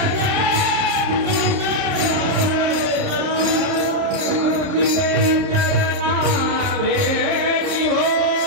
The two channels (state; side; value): late; left; 30 ms